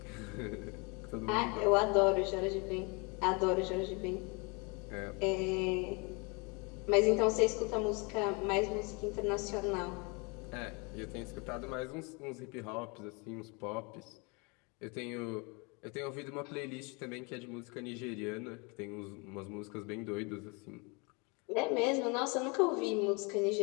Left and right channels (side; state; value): right; quieter; 30.6 dB